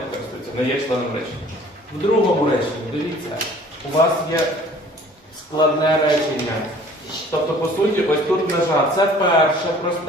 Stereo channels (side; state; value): both; normal; correlation 0.52